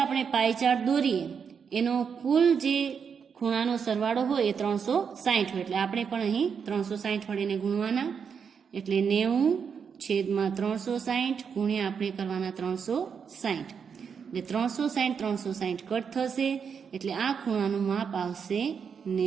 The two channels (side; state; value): left; quieter; 6.6 dB